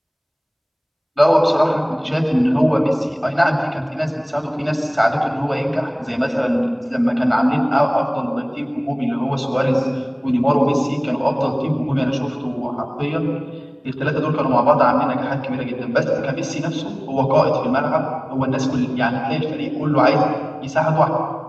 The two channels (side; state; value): both; identical; correlation 1.00